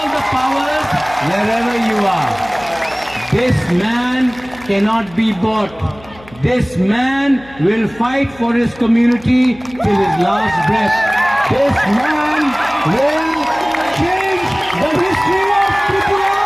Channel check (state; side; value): noise; left; hum, 22 dB below the sound